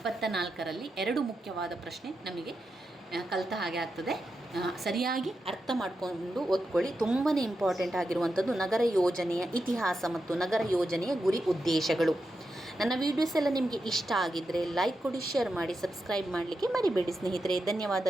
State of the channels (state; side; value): normal; both; correlation 0.88